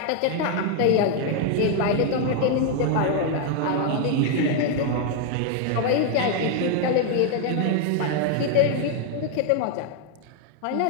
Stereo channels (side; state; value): both; different; correlation 0.00